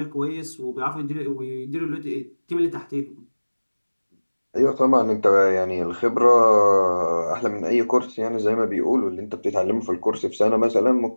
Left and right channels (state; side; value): inverted; both; correlation -1.00